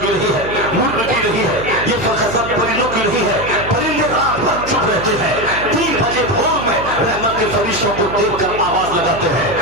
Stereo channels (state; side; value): noise; right; hum, 11 dB below the sound